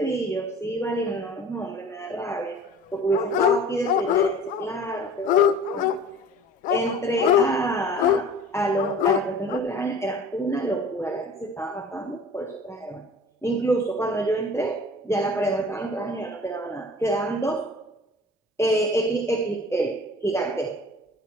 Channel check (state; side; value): normal; both; correlation 0.44